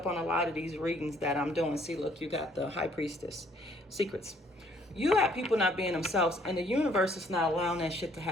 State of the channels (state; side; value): normal; both; correlation 0.63